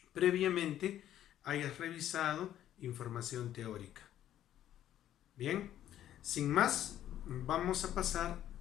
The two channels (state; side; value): quieter; right; 11.7 dB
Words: previamente hayas revisado información teórica. Bien, sin más, vamos a pasar